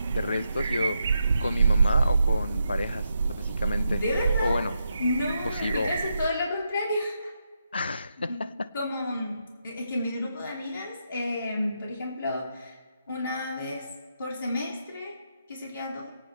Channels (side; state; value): both; inverted; correlation -0.83